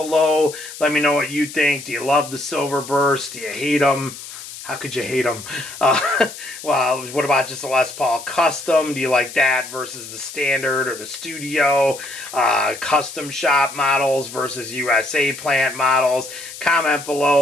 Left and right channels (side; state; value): left; noise; hiss, 13 dB below the sound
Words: Let me know what you think. Do you love the Silverburst? Do you hate them? How could you hate them? Well, what about just a Les Paul Custom? Do you like that versus the standard or the studio? Custom shop models versus USA plant models? Comment